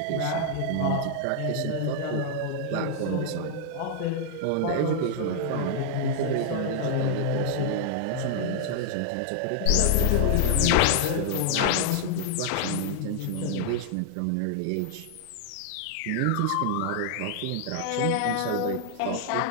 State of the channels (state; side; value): different; both; correlation -0.01